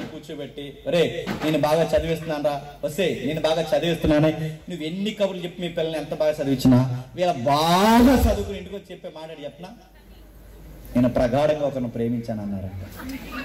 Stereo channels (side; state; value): both; identical; correlation 1.00